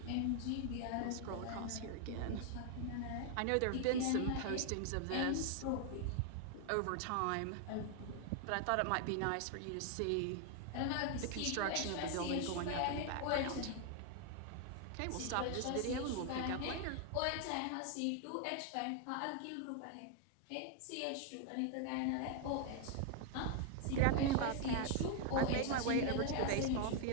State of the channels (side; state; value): both; different; correlation 0.00